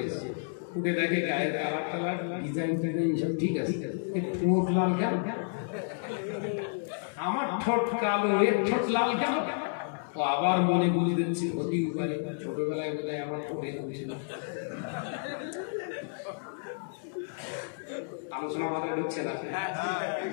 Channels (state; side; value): silent; right; digital silence